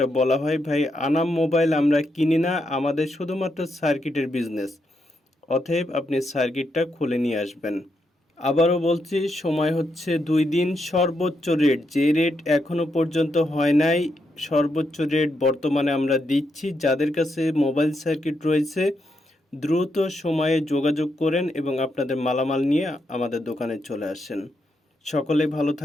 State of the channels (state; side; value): normal; both; correlation 0.81